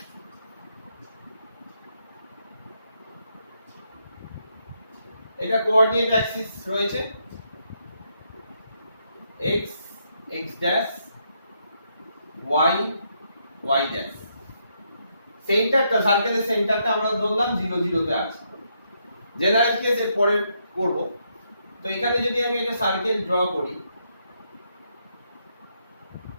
এটা কোঅর্ডিনেট অ্যাক্সিস রয়েছে, x x dash, y y dash. সেন্টারটা, সার্কেলের সেন্টারটা আমরা ধরলাম 0 0 তে আছে। জেনারেল কেস এর পরে করব। তো এখানে যদি আমি একটা সার্কেল ড্র করি,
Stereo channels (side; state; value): both; inverted; correlation -0.77